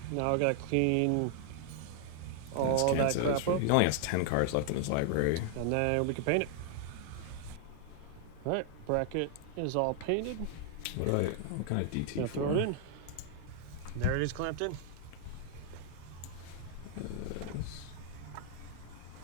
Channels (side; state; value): both; different; correlation 0.00